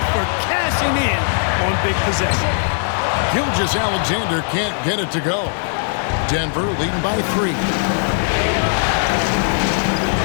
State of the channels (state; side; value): silent; right; 67 dB below the other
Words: for cashing in on big possession. Gilgeous-Alexander can't get it to go. Denver leading by 3.